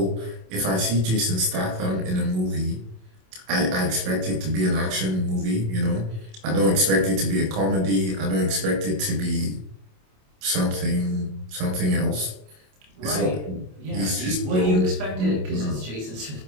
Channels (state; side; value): late; left; 27 ms